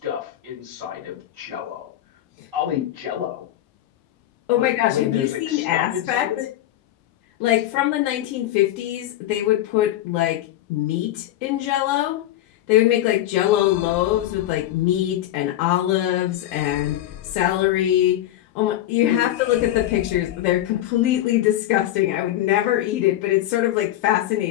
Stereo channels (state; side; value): quieter; right; 13.3 dB